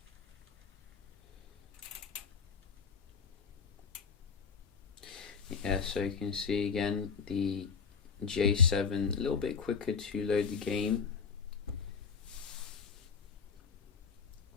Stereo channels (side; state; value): right; quieter; 5.7 dB